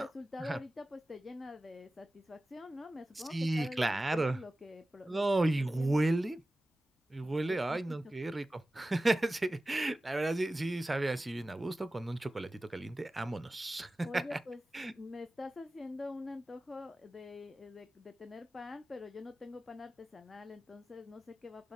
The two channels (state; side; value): normal; both; correlation 0.96